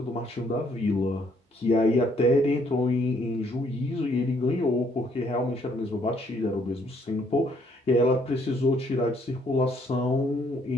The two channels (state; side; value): normal; both; correlation 0.67